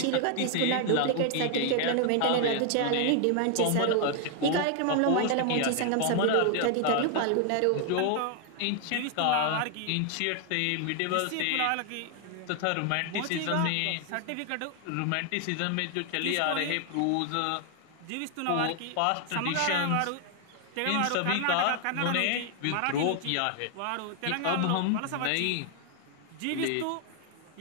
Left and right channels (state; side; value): different; both; correlation 0.00